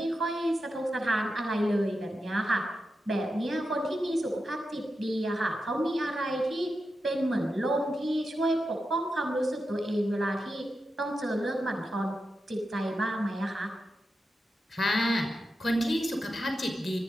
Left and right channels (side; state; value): both; normal; correlation 0.89